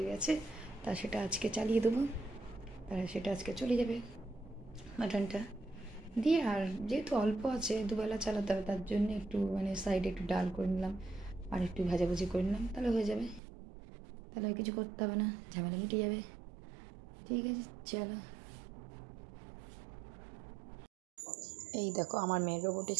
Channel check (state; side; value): drops out; left; at 13.4 s